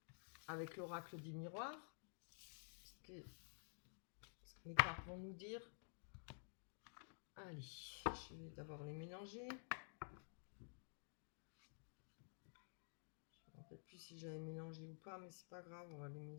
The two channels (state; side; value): silent; right; digital silence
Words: avec l'oracle du miroir ce que les cartes vont nous dire. Allez, je vais d'abord les mélanger. Je ne me rappelle plus si j'avais mélangé ou pas, mais c'est pas grave, on va les